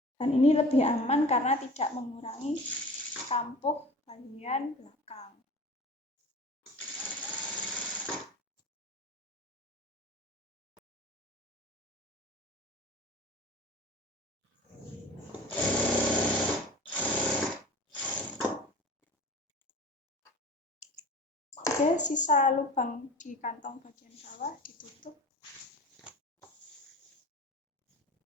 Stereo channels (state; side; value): normal; both; correlation 0.38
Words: Dan ini lebih aman karena tidak mengurangi kampuh bagian belakang. Oke, sisa lubang di kantong bagian bawah ditutup.